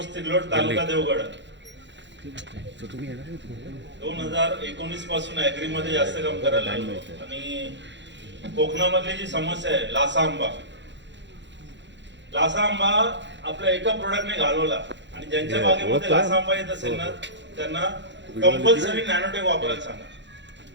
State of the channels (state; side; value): late; left; 0.52 ms